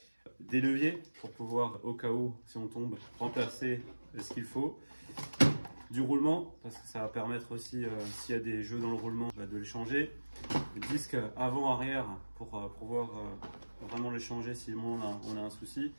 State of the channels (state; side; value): inverted; both; correlation -1.00